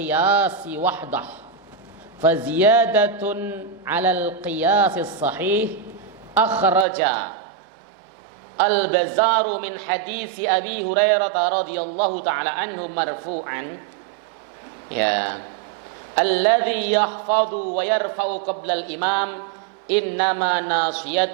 wahdah fa ziyadatun 'ala al-qiyas as-sahih akhraja al-Bazzaru min hadits Abi Hurairah radhiyallahu ta'ala anhu marfu'an ya alladhi yahfadhu wa yarfa'u qabla al-imam innama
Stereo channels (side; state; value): left; drops out; at 6.9 s